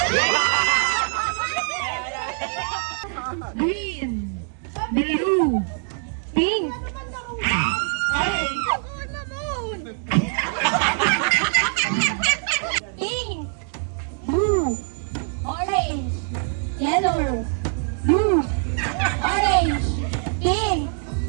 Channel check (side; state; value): left; silent; 55 dB below the other